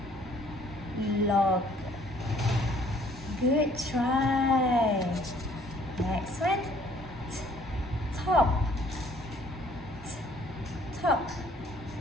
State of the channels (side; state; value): both; normal; correlation 0.59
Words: Log. Good try. Next one. Top. Top.